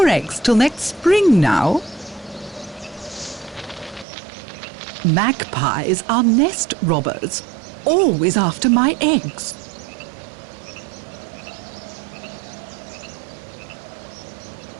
eggs till next spring now. Magpies are nest robbers, always after my eggs.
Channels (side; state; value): left; drops out; at 4.0 s